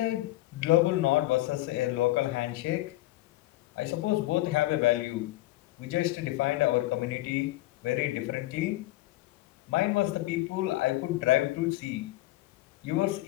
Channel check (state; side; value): quieter; right; 17.6 dB